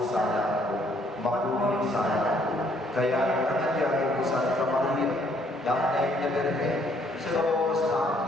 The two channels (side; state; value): both; normal; correlation 0.66